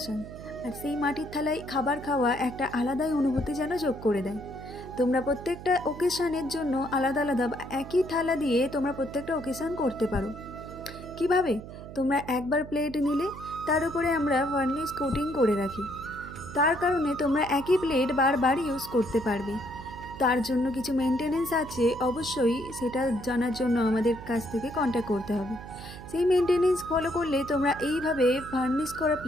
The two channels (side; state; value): right; noise; hum, 13 dB below the sound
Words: আর সেই মাটির থালায় খাবার খাওয়া একটা আলাদাই অনুভূতি যেন যোগ করে দেয়। তোমরা প্রত্যেকটা ওকেশনের জন্য আলাদা আলাদা বা একই থালা দিয়ে তোমরা প্রত্যেকটা ওকেশন করতে পারো। কিভাবে? তোমরা একবার প্লেট নিলে, তার উপরে আমরা ভার্নিশ কোটিং করে রাখি। তার কারণে তোমরা একই প্লেট বারবার ইউজ করতে পারবে। তার জন্য কিছু মেনটেনেন্স আছে, অবশ্যই সেটা জানার জন্য আমাদের কাছ থেকে কন্ট্যাক্ট করতে হবে। সেই মেনটেনেন্স ফলো করলে তোমরা এইভাবে ভার্নিশ করা